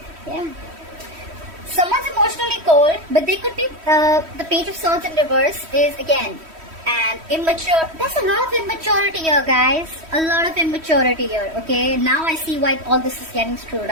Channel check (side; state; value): left; late; 3.1 ms